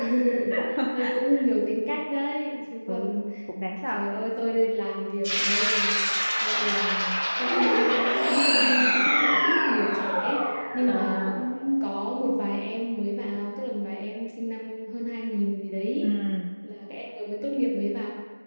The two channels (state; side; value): inverted; both; correlation -1.00